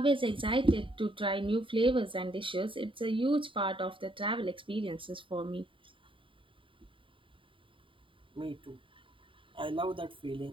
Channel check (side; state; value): left; late; 0.25 ms